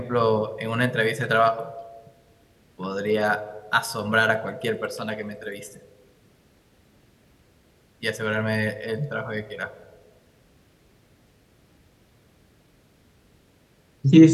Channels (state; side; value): identical; both; correlation 1.00